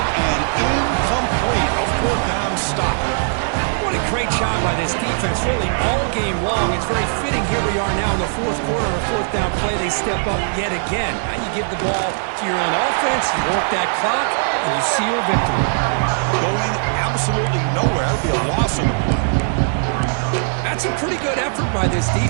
and incomplete. A fourth down stop. What a great job by this defense, really all game long. It's very fitting. Here we are now in the fourth quarter on a fourth down play. They step up yet again. Now you give the ball to your own offense, you work that clock, and you seal victory. Going absolutely nowhere. That would be a loss on the play. That's a pretty good effort by this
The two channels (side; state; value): left; silent; digital silence